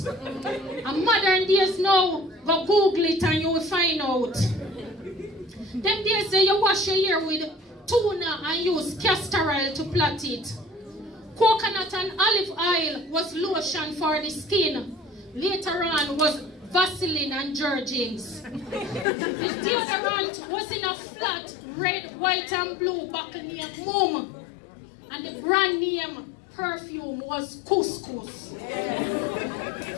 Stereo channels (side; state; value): right; drops out; at 19.1 s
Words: And modern days now, go Google it and you will find out. Them days there, you wash your hair with tuna and use castor oil to plait it. Coconut and olive oil was lotion for the skin. Later on was Vaseline and Jergens. The deodorant was in a flat red, white and blue bottle named Mum. And the brand name perfume was Couscous.